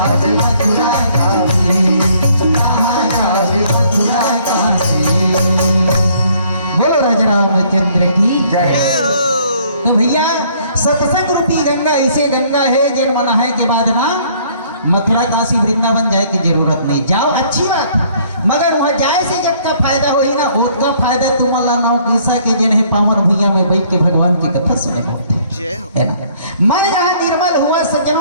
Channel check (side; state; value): both; inverted; correlation -0.62